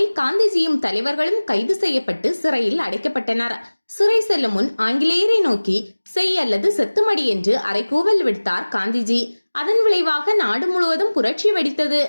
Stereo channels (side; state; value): both; inverted; correlation -1.00